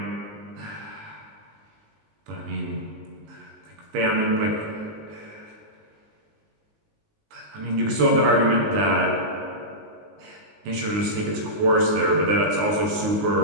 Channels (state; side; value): late; left; 19 ms